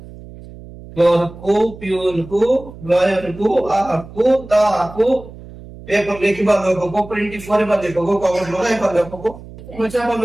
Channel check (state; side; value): noise; right; hum, 17 dB below the sound